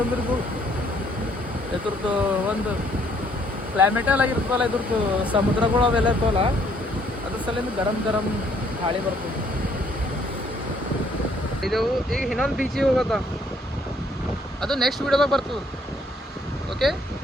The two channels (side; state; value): both; normal; correlation 0.65